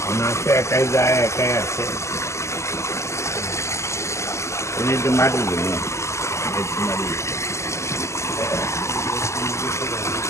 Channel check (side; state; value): right; late; 0.13 ms